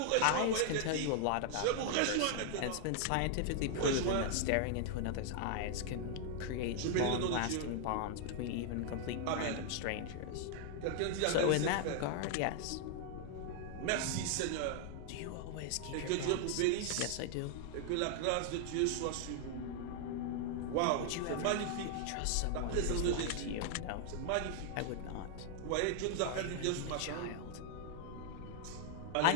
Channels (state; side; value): different; both; correlation 0.00